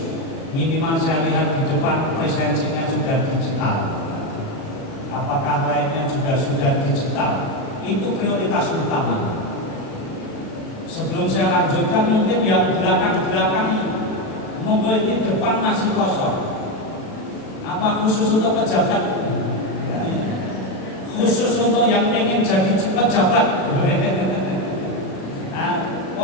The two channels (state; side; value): late; right; 36 ms